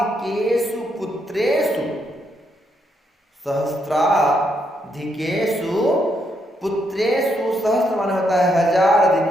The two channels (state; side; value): normal; both; correlation 0.77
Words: पुत्रेषु, सहस्राधिकेषु पुत्रेषु, सहस्त्र माने होता है हजार,